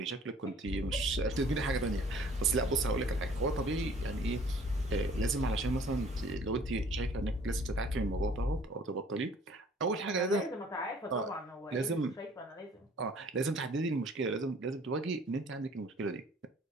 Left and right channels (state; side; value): normal; both; correlation 0.54